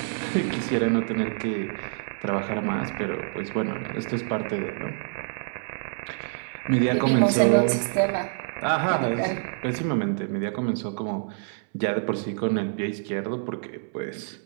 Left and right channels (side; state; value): left; silent; 60 dB below the other